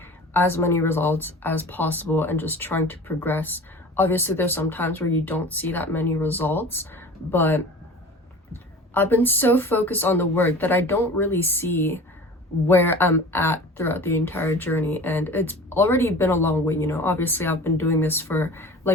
as many results as possible and just trying to progress. Obviously, there's some times where you don't see that many results, but I've been so focused on the work that I don't really see where I'm at throughout the entire journey. And it's already been a long way, Obviously, I've been doing this for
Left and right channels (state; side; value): normal; both; correlation 0.39